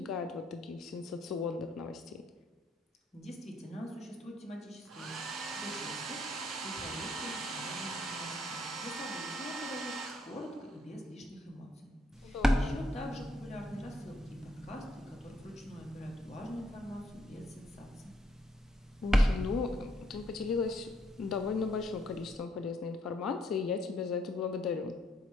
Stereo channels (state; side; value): normal; both; correlation 0.72